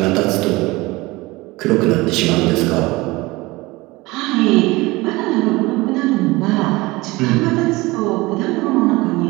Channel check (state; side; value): quieter; left; 21.5 dB